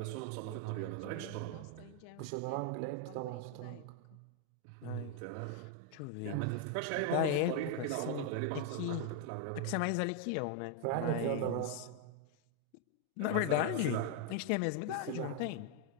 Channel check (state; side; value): different; both; correlation 0.00